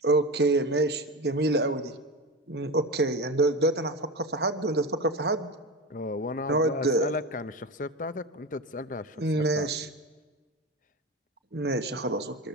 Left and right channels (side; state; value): both; normal; correlation 0.23